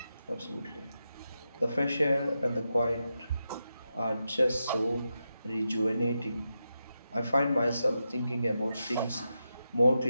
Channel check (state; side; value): inverted; both; correlation -0.88